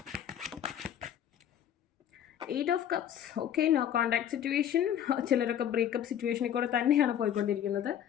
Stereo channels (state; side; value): quieter; right; 10.0 dB